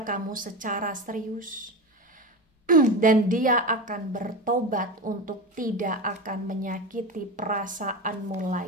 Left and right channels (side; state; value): both; normal; correlation 0.23